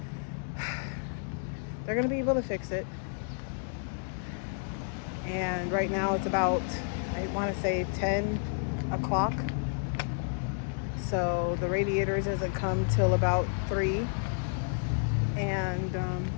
they're gonna be able to fix it. And right now it's about, I want to say 10 o'clock. So the radiators doesn't come till about 3. And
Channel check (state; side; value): silent; right; digital silence